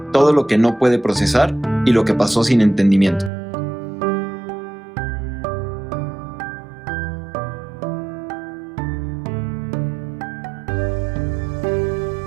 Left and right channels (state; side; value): drops out; left; at 3.3 s